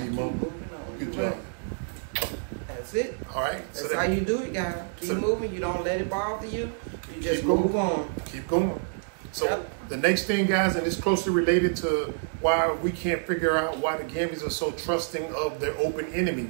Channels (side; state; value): left; silent; digital silence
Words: mom. Keep moving on. Good job. That's it. All right. That's how you do it, guys. Keep moving. You don't let it bother you. You just going. move on. Keep going. So the next thing, guys, and it's closely related to why we can't figure out why the Gambians are so trusting of their open enemy.